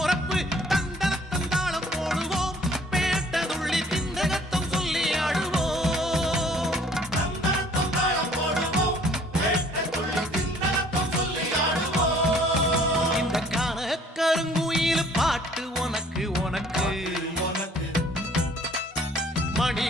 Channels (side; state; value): both; normal; correlation 0.56